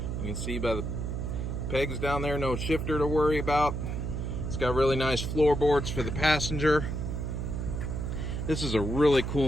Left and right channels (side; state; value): right; noise; hum, 3 dB below the sound